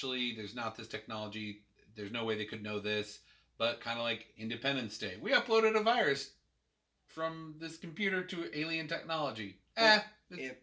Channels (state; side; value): identical; both; correlation 1.00